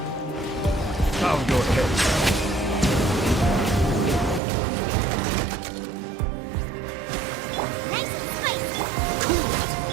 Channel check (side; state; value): left; drops out; at 4.4 s